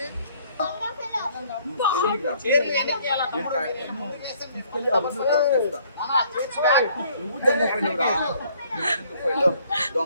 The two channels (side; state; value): both; inverted; correlation -0.61